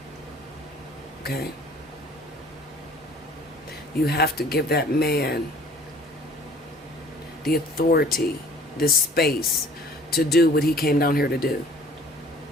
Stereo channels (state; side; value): normal; both; correlation 0.52